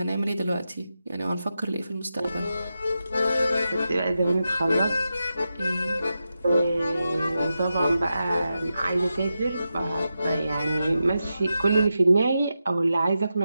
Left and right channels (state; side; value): inverted; both; correlation -0.89